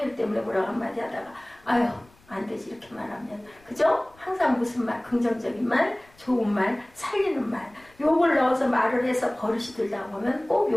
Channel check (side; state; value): left; noise; rumble, 29 dB below the sound